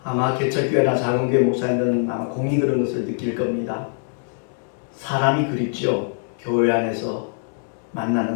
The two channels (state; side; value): silent; right; digital silence